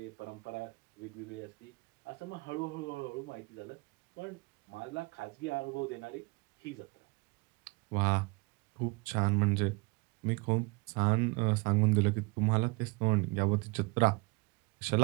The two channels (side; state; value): left; quieter; 27.3 dB